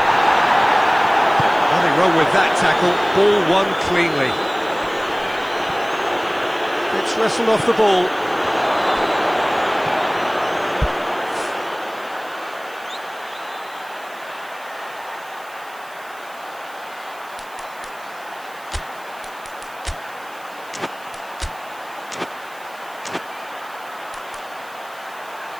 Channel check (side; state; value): right; noise; hiss, 23 dB below the sound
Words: Nothing wrong with that tackle. Ball won cleanly. It's wrestled off the ball.